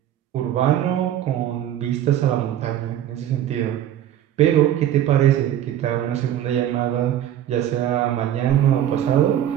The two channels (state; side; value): quieter; left; 11.4 dB